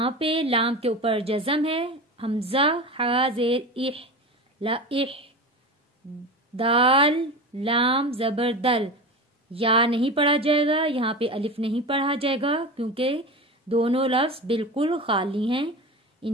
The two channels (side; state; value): both; normal; correlation 0.28